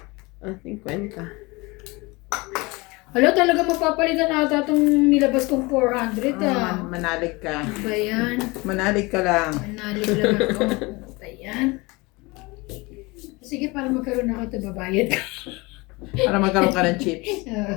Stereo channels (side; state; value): right; quieter; 24.7 dB